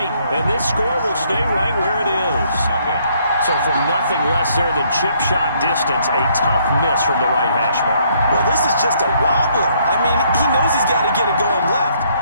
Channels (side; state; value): both; inverted; correlation -0.68